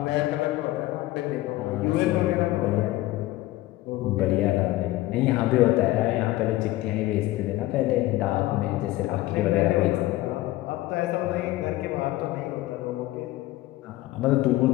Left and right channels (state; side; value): quieter; right; 17.2 dB